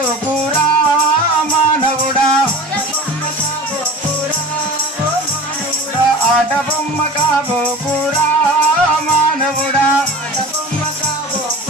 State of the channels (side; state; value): both; normal; correlation 0.38